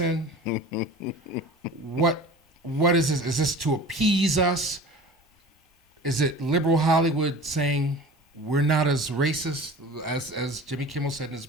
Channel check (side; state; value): both; normal; correlation 0.39